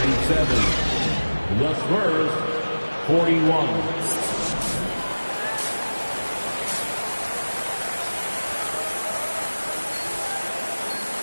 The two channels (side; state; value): both; inverted; correlation -1.00